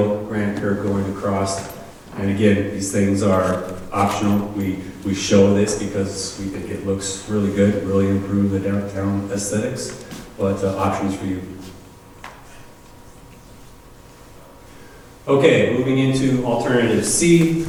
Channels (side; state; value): both; identical; correlation 1.00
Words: granite curb going across. And again, these things are optional. We show this because we think it looks really good, really improve the downtown aesthetics, but options for you. Okay, moving into alternative C.